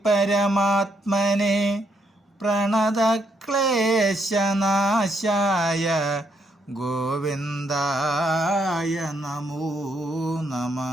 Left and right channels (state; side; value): normal; both; correlation 0.75